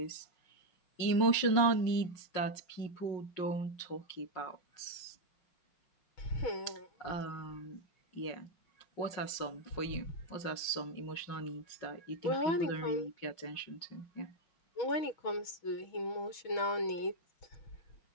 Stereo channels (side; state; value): right; late; 5.5 ms